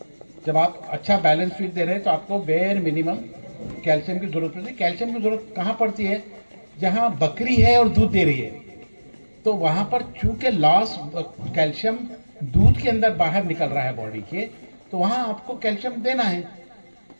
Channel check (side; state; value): both; inverted; correlation -1.00